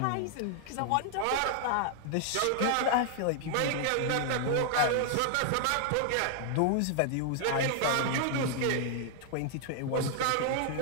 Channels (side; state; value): both; different; correlation 0.00